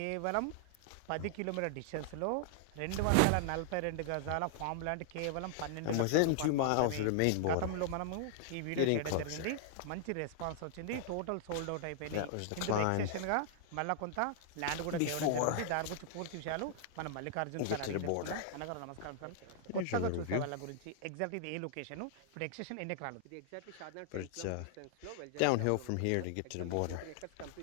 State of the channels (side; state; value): both; different; correlation -0.01